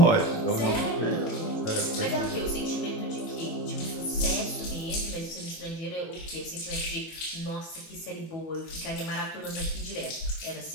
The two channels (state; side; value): late; right; 18 ms